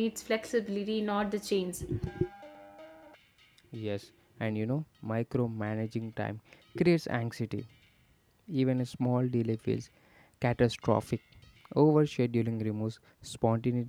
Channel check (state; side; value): identical; both; correlation 1.00